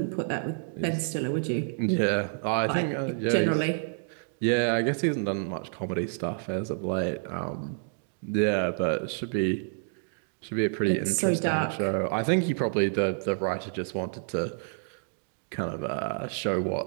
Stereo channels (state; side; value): silent; left; digital silence